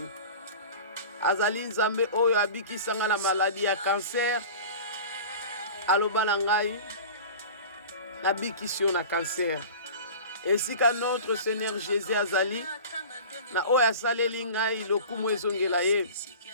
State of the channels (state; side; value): inverted; both; correlation -0.37